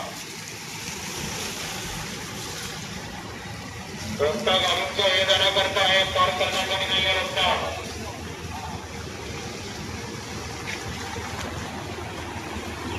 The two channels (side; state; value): both; identical; correlation 1.00